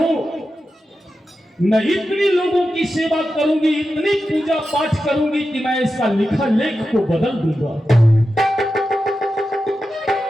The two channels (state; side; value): normal; both; correlation 0.91